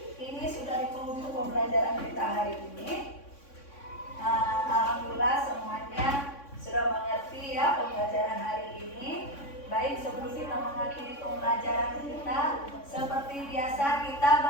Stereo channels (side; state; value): right; late; 3.6 ms